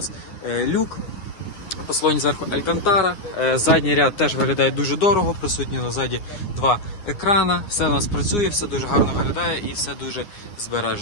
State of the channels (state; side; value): late; right; 9.7 ms